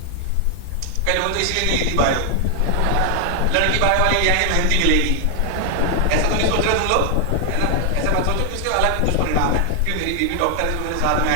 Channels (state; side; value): different; both; correlation 0.00